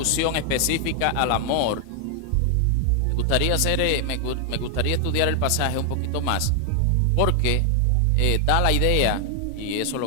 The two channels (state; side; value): different; both; correlation 0.00